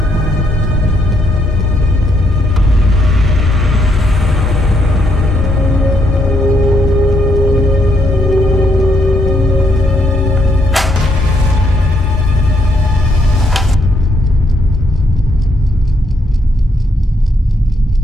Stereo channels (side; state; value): both; normal; correlation 0.75